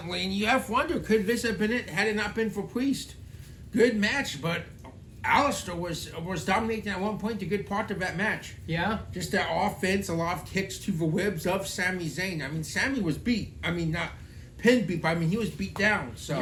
And you have to wonder, could this have been it had it not been for Priest? Good match, but Aleister was dominating at one point a good part of that match. Yeah. Just that offense, a lot of kicks to the ribs of Sami Zayn. I mean, Sami was beat. I mean, not pinned beat, but I mean, he was beat down. So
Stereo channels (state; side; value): identical; both; correlation 1.00